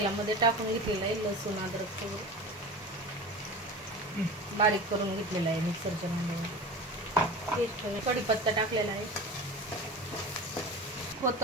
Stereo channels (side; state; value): both; normal; correlation 0.33